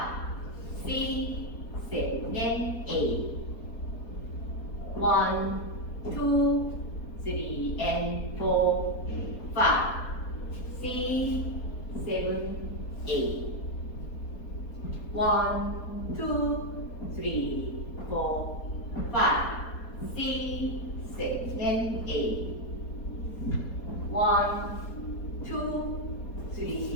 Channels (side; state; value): right; late; 4.3 ms